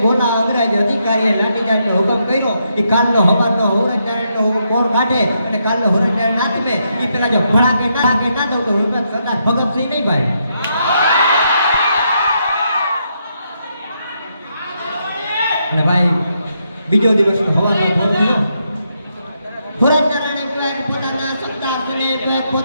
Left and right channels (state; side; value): inverted; both; correlation -0.79